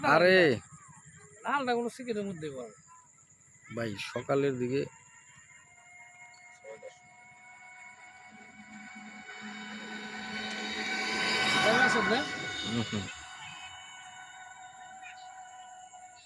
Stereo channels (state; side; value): identical; both; correlation 1.00